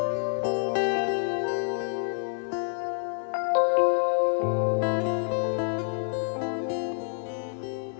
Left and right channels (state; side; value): silent; right; digital silence